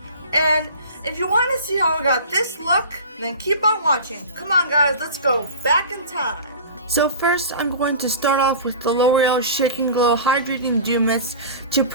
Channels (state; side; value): inverted; both; correlation -0.37